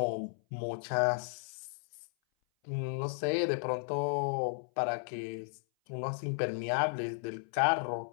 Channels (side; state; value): right; silent; 55 dB below the other